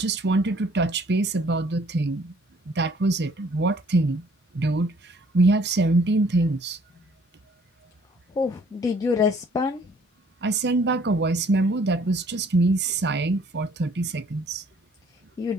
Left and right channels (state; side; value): normal; both; correlation 0.59